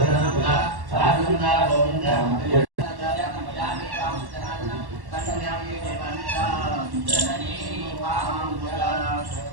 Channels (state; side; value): late; left; 1.1 ms